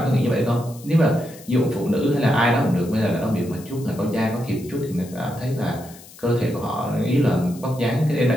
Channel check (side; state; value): left; noise; hiss, 20 dB below the sound